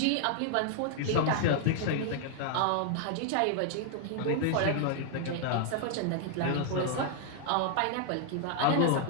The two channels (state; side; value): different; both; correlation 0.00